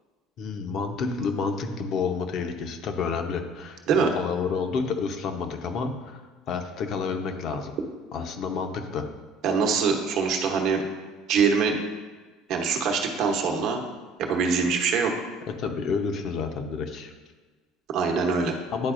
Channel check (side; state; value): both; normal; correlation 0.52